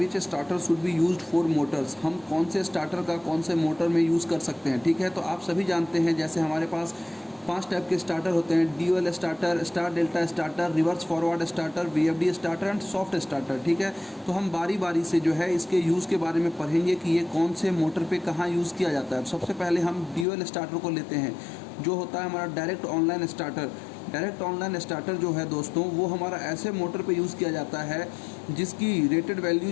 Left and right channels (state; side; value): drops out; right; at 20.2 s